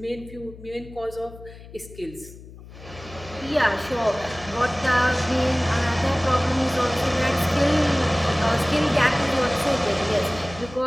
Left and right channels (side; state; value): left; noise; hum, 17 dB below the sound